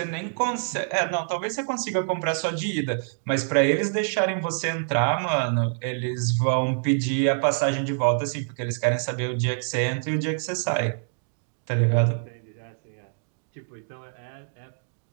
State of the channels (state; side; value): silent; left; digital silence